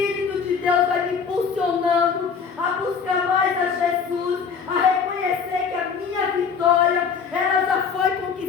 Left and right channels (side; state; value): right; quieter; 6.1 dB